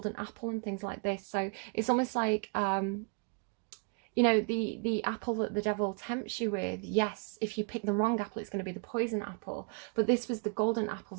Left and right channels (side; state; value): left; quieter; 37.1 dB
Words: apple and things like this. So it's almost like you know, the apple that the devil tempts you with, yes, if you pick the wrong apple, it's going to be the poison apple. But this was the golden apple